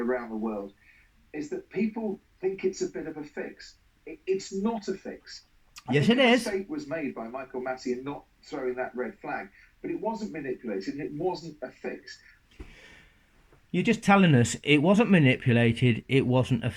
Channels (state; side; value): identical; both; correlation 1.00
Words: the world, is that people think it's a bit of a fix. It's not a fix. Yes, it is. A mistake was made by Michael Massey in not throwing that red flag, but it wasn't manipulated and it wasn't a fix. You're just telling us it wasn't manipulated, it wasn't a